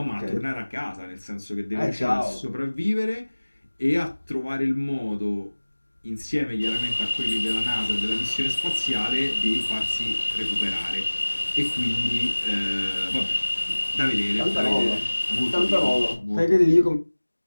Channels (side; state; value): both; inverted; correlation -1.00